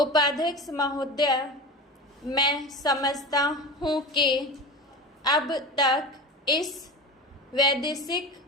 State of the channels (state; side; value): normal; both; correlation 0.29